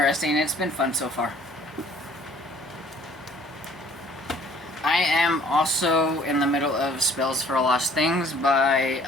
It's been fun so far. I am also in the middle of Spells for Lost Things by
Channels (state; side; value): normal; both; correlation 0.56